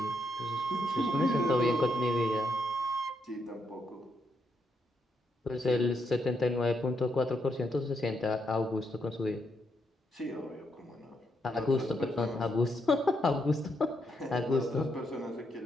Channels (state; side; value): normal; both; correlation 0.78